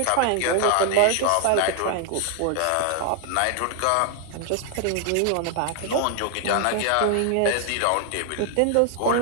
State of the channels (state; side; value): different; both; correlation 0.00